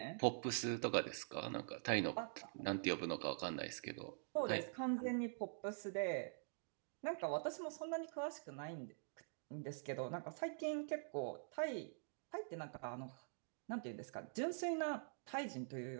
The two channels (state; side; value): silent; left; digital silence